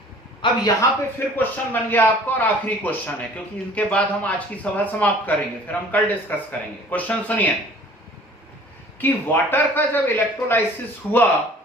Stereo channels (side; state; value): both; normal; correlation 0.50